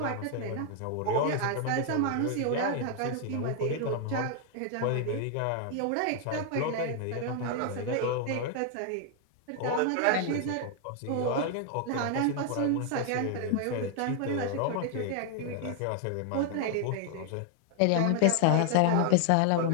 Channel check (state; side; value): different; both; correlation 0.00